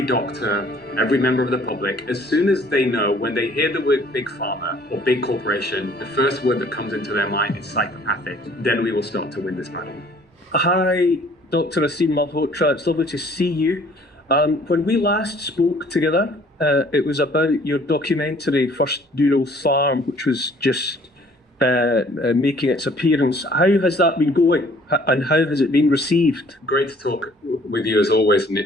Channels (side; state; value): both; normal; correlation 0.56